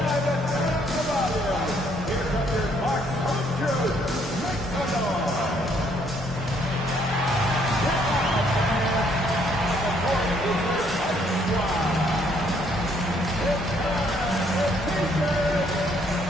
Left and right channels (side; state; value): both; normal; correlation 0.67